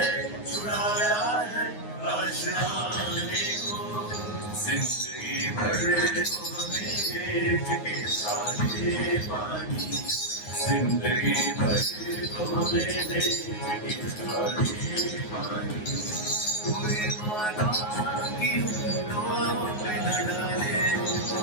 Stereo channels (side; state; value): right; late; 9.5 ms